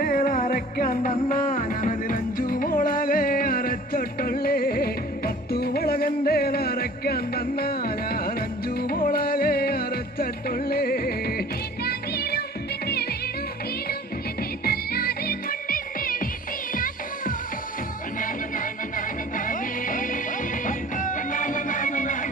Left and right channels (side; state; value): both; normal; correlation 0.47